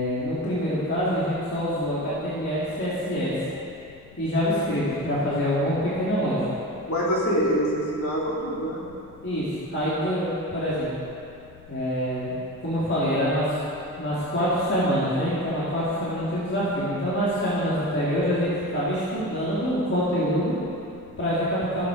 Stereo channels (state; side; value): noise; left; rumble, 23 dB below the sound